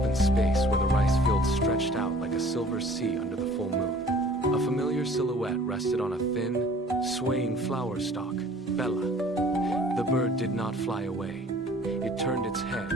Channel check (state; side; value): normal; both; correlation 0.51